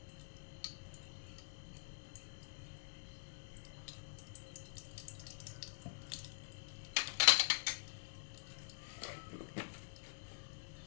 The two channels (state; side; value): silent; right; digital silence